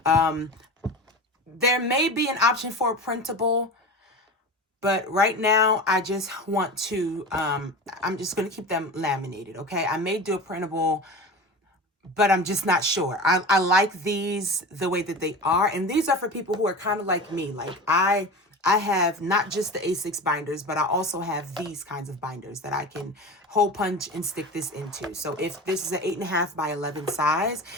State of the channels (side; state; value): both; normal; correlation 0.31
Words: There may be an option for a printable, but right now I just want to, I'm just going to keep them laminated, okay? I may do a printable, but I'm just not sure. I like these the way that they are. And these are for people who are kind of like me. Like I I have not just the A6 binders, but I also have these kinds of binders that I can hole punch and stick this into. So if this is an 8.5 by 11 size,